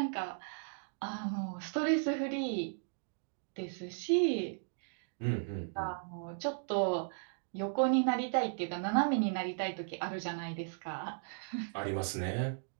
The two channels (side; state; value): left; silent; digital silence